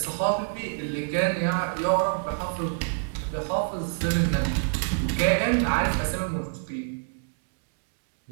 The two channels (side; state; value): left; silent; digital silence